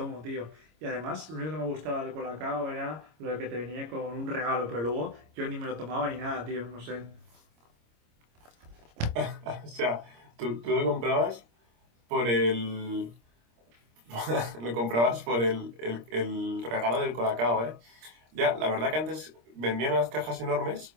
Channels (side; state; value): left; late; 26 ms